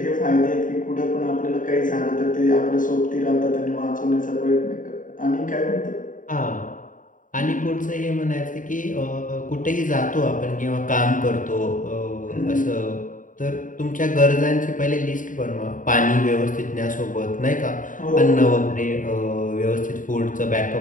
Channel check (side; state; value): right; late; 0.38 ms